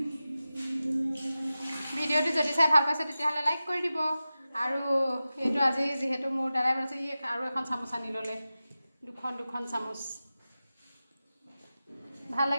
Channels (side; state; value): both; inverted; correlation -0.94